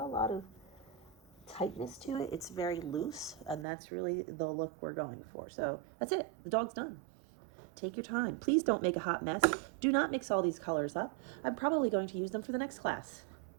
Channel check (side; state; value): left; drops out; at 3.7 s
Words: a lot of tightness to it. It's very loose, and that's really the look we're going for. So that's it. The dog's done. Take your time. Please don't make a hot mess. Do not mix all these colors up. I'm probably going to use them for the next class.